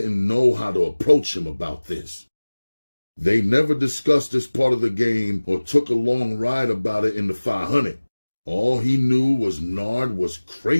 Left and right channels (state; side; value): inverted; both; correlation -1.00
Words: know how to approach him about this. They never discussed this part of the game or took a long ride about it in the 500. All he knew was Nard was